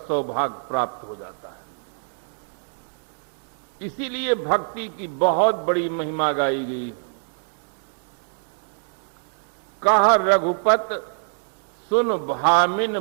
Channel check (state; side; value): silent; left; digital silence